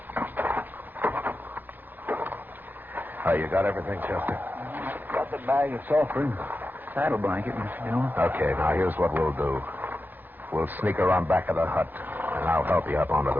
You got everything, Chester? Got the bag of sulfur and saddle blanket, Mr. Dillon. Okay, now here's what we'll do. We'll sneak around back of the hut, and I'll help you up onto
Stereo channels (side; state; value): left; late; 0.087 ms